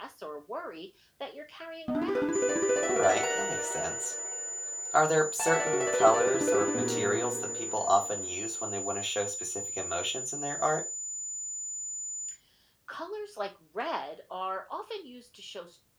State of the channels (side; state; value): both; identical; correlation 1.00